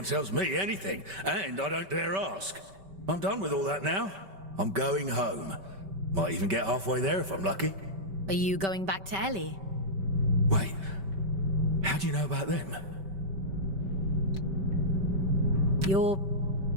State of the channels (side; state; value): left; late; 5.2 ms